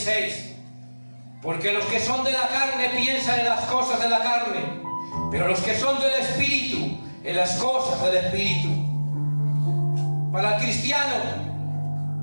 porque los que son de la carne piensan en las cosas de la carne, pero los que son del Espíritu, en las cosas del Espíritu. Para el cristiano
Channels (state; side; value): inverted; both; correlation -1.00